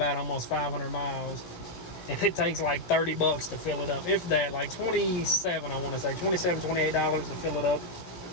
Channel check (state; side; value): late; right; 17 ms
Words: almost 500 miles. And it takes like $30 to fill it up. If that, like 27, I want to say. $27, $28 to fill it up.